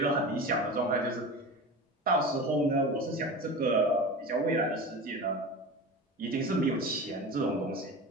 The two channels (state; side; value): normal; both; correlation 0.30